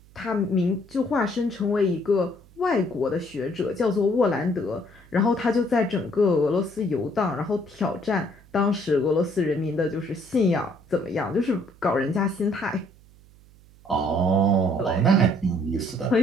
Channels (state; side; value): noise; right; hum, 26 dB below the sound